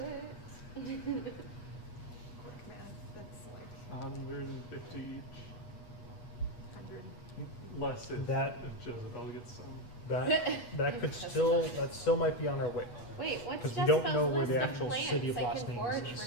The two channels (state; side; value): late; right; 8.3 ms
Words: quick math? That's like 150 each. 100. Less if Jezebel gets some. That could still, that still might be on our way. Wait, what's 'Cause we don't Jezebel's know where the list of actual plants? city of I Los can Angeles forage is.